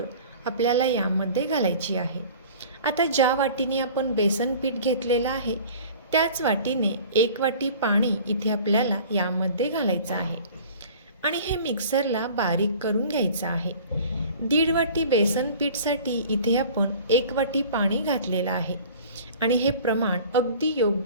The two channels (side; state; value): both; inverted; correlation -0.44